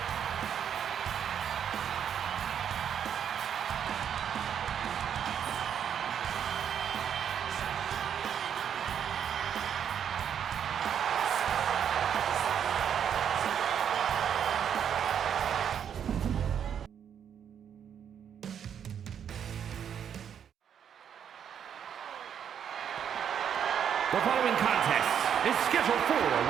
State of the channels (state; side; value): quieter; left; 8.5 dB